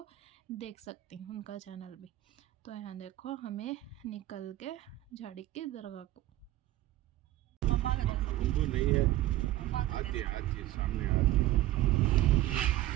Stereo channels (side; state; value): left; quieter; 15.2 dB